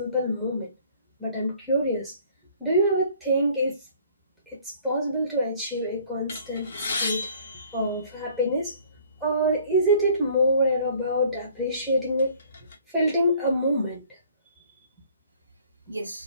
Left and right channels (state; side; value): inverted; both; correlation -0.55